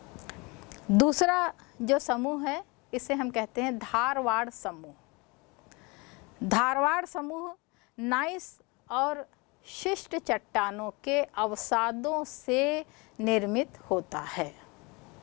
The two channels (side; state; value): right; quieter; 27.4 dB